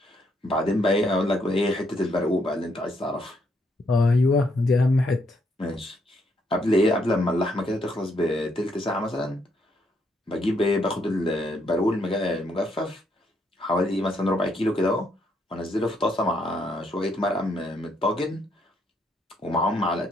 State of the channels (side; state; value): both; normal; correlation 0.74